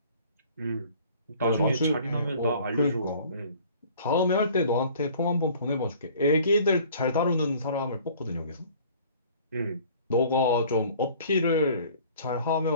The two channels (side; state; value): both; inverted; correlation -0.51